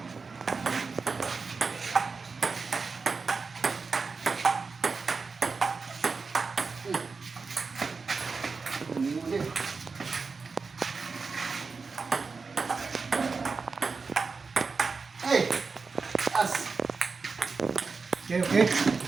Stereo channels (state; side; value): quieter; left; 4.6 dB